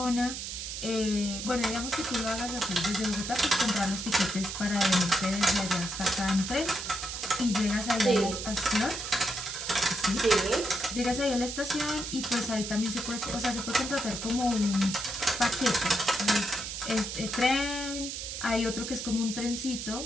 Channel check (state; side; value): noise; right; hiss, 6 dB below the sound